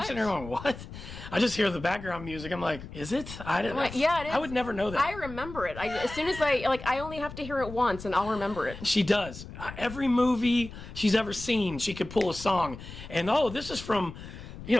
sitting there going, "What?" I just hear the background music. I'm like, "Is it?" I didn't. Like, yeah, it is. I would never know that. I remember it. As soon as I only have to hear it once, and I'll remember it. She does. Every movie she's ever seen, she could pull a song, and this is from,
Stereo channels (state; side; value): noise; left; rumble, 13 dB below the sound